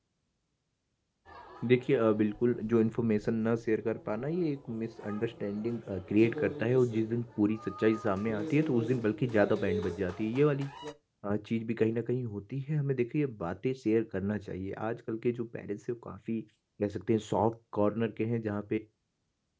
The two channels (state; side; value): identical; both; correlation 1.00